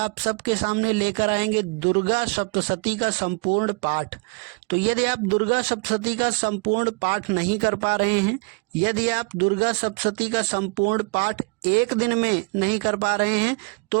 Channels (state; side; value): quieter; left; 33.2 dB